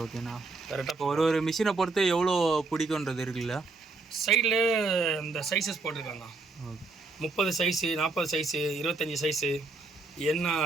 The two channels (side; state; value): left; quieter; 3.6 dB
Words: ஓகேண்ணா. கரெக்டாக ஒரு மிஷினை பொறுத்து எவ்வளோ பிடிக்குன்றது இருக்குல்ல. சைடில் இந்த சைஸஸ் போட்டிருக்காங்க. 30 சைஸு 40 சைஸு 25 சைஸு என்ன